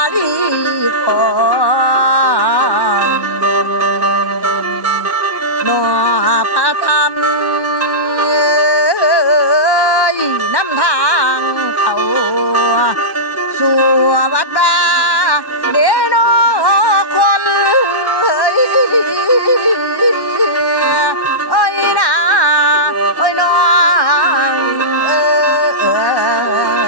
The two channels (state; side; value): late; right; 1.1 ms